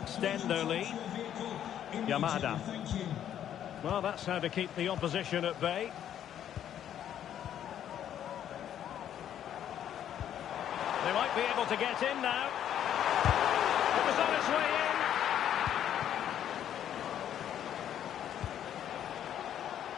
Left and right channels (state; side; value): quieter; right; 10.3 dB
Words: their lead. Yamada. Well, that's how to keep the opposition at bay. They might be able to get in now. It was on its way in.